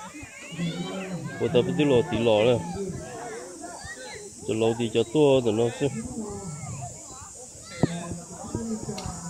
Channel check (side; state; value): both; identical; correlation 1.00